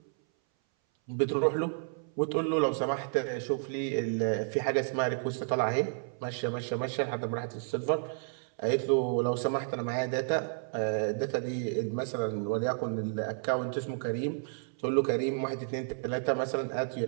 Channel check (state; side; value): silent; left; 57 dB below the other